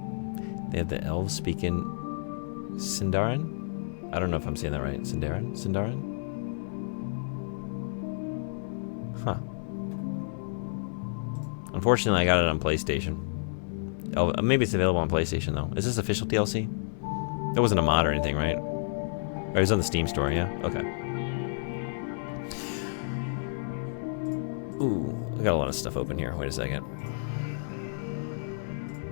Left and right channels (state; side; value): silent; right; digital silence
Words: They have the elves speaking Sindarin? I don't know if I'm saying that right. Sindarin? Huh. Unfortunately, I got it on PlayStation. Oh, maybe it's available on PlayStation, though. Is this official DLC? It wasn't a mod or anything, right? Or it was on the Steam store, yeah? Okay. Ooh, I got a lot of stuff open here. Wait a second.